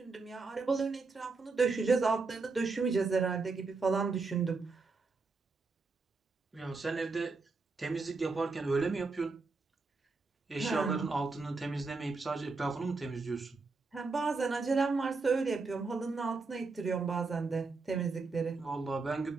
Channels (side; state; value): left; quieter; 4.1 dB